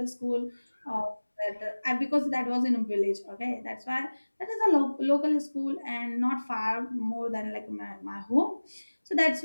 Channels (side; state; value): both; inverted; correlation -1.00